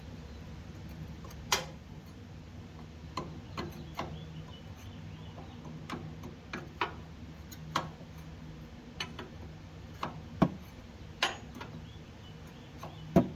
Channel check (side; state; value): both; identical; correlation 1.00